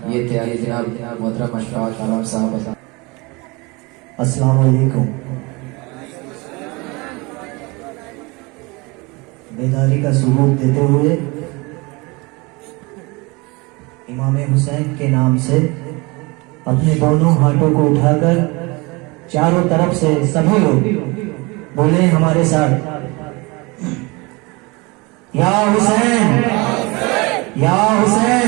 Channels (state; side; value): quieter; left; 26.1 dB